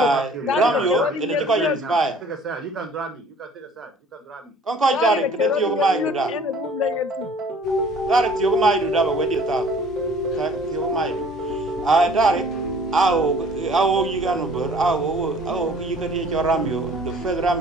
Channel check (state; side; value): normal; both; correlation 0.52